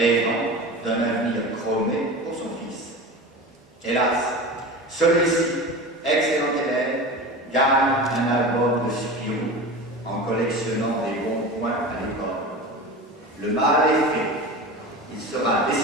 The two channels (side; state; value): both; normal; correlation 0.31